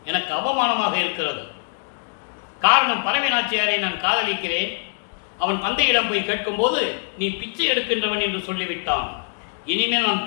எனக்கு அவமானமாக இருக்கிறது. காரணம், பறவை நாச்சியாரை நான் காதலிக்கிறேன். அவன் தந்தையிடம் போய் கேட்கும்போது நீ பிச்சை எடுக்கின்றவன் என்று சொல்லிவிட்டான். இனிமேல் நான்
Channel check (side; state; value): right; silent; 62 dB below the other